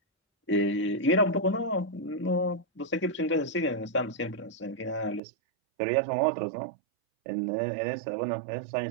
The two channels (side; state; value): left; drops out; at 5.2 s